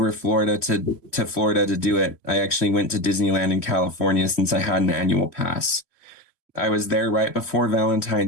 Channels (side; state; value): right; late; 3.1 ms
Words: Florida to Florida to do it, I actually went to Disneyland in California since I had an annual pass. I was there right before